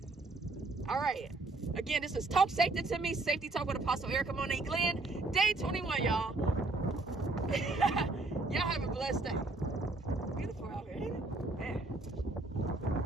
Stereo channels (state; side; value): quieter; left; 3.2 dB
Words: All right. Again, this is Talk Safety to Me, Safety Talk with Apostle Erica Monet Glenn, day 21, y'all. Y'all have a blessed day.